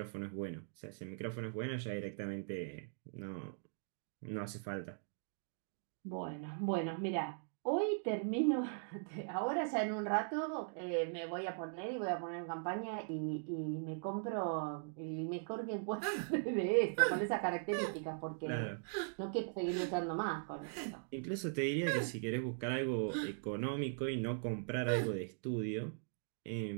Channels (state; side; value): silent; left; digital silence